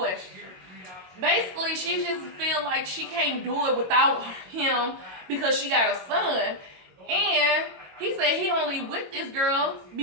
Basically, she just feel like she can't do it without him because she got a son. And he said he only with this girl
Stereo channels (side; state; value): left; late; 22 ms